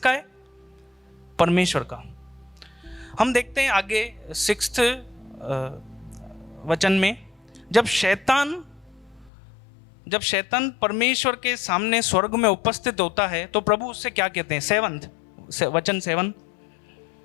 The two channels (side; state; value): right; drops out; at 9.3 s